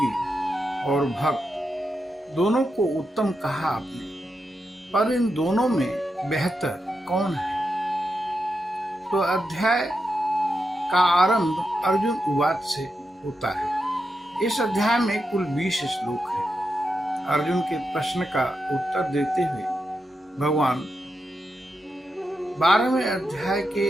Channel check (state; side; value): normal; both; correlation 0.86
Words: और भक्त दोनों को उत्तम कहा आपने, पर इन दोनों में बेहतर कौन है? तो अध्याय का आरंभ अर्जुन उवाच से होता है। इस अध्याय में कुल 20 श्लोक हैं। अर्जुन के प्रश्न का उत्तर देते हुए भगवान 12वें अध्याय